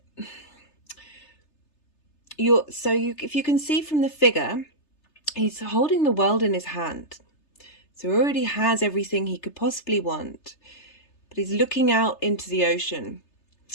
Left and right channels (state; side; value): late; right; 3.3 ms